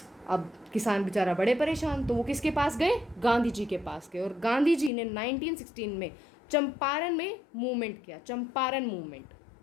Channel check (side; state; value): right; drops out; at 4.9 s